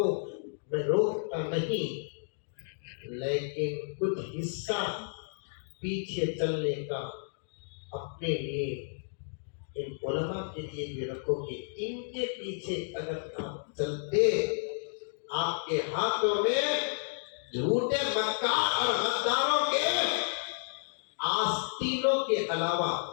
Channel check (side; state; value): right; silent; digital silence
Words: میں روکتا نہیں, لیکن کچھ حصہ پیچھے چلنے کا اپنے لیے ان علماء کے لیے بھی رکھو کہ ان کے پیچھے اگر آپ چلتے, آپ کے ہاتھوں میں جھوٹے مکار اور غداروں کے آستینوں کے علاوہ